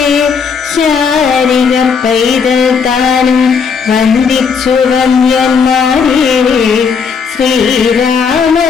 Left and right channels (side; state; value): right; quieter; 5.9 dB